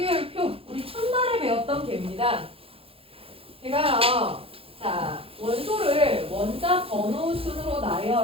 우리 첫날에 배웠던 개입니다. 제가요. 자, 원소를 원자 번호 순으로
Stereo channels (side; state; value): left; late; 0.27 ms